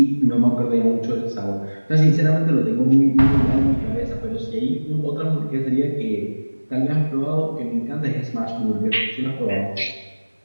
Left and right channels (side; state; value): both; inverted; correlation -1.00